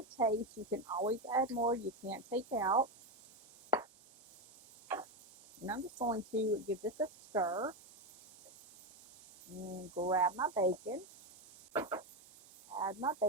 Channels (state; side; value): normal; both; correlation 0.11